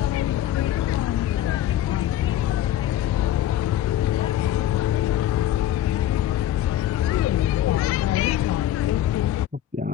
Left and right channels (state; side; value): quieter; right; 12.4 dB